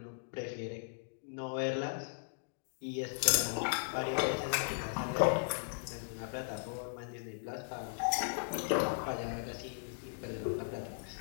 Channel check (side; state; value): right; silent; digital silence